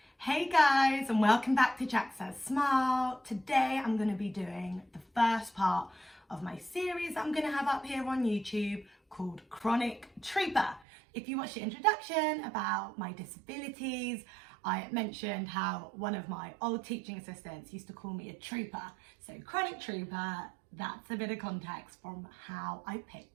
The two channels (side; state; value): left; drops out; at 10.9 s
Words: Hey guys, and welcome back to JacsSaysSmile. Today I'm going to be doing the first part of my series I'm going to have up here on YouTube called Chronic Trooper. If you watched the introduction about my disabilities, I mentioned how one of my old teaching assistants used to call me a trooper. So Chronic Trooper, that's a bit of context from how I